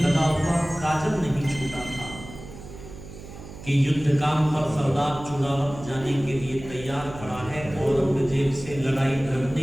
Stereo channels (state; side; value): noise; right; hum, 14 dB below the sound